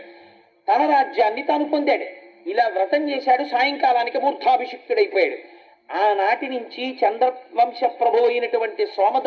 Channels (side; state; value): both; identical; correlation 1.00